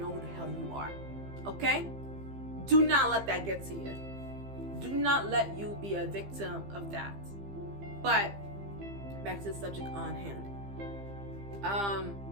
who the hell you are. Okay? Do not let that get to you. Do not let you be a victim of that. But back to the subject on hand.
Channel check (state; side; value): late; left; 15 ms